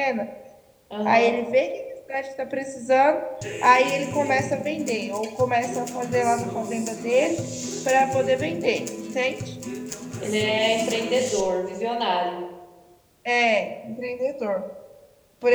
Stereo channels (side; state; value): both; identical; correlation 1.00